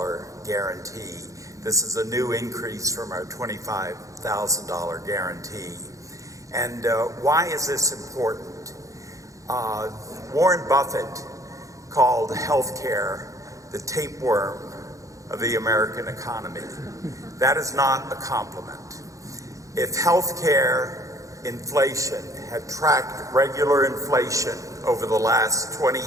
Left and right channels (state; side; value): late; left; 0.16 ms